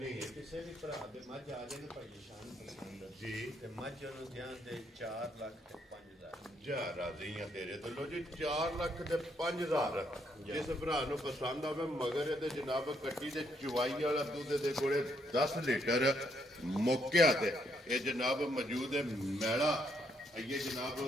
ਹੈ ਕਿਸੇ ਵੀ ਭਰਾ ਦੇ ਮੱਝ ਆ ਜਾਏ ਨਾ ਭਾਈ ਸ਼ਾਨ ਪਸੰਦ ਜੀ ਤੇ ਮੱਝ ਨੂੰ ਧਿਆਨ ਦੇ 4 ਲੱਖ ਤੇ 5,000 ਜਾ ਰਾਜ਼ੀ ਆ ਤੇਰੇ ਤੋਂ ਲੋ ਜੀ 4 ਲੱਖ ਤੇ 5,000 ਜਿਸ ਭਰਾ ਨੂੰ ਪਸੰਦ ਆਵੇ ਮਗਰ ਇਹਦੇ ਜਨਾਬ ਕੱਟੀ ਤੇ ਚਵਾਈ ਵਾਲਾ ਦੁੱਧ ਦੇ ਕੋਲੇ 10 ਲੀਟਰ ਮੁੱਕਿਆ ਤੇ ਇਹ ਜਨਾਬ ਮੌਜੂਦ ਹੈ ਮੈਲਾ ਇਹ ਜਨਾਬ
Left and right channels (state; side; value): normal; both; correlation 0.73